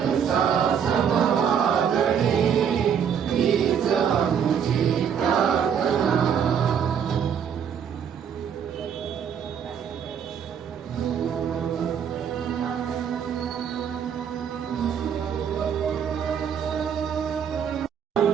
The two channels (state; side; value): quieter; left; 7.9 dB